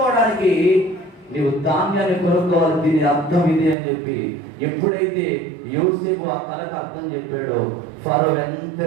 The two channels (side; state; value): left; drops out; at 3.8 s